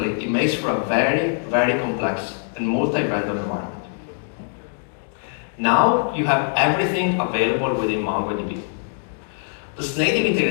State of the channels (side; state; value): right; silent; digital silence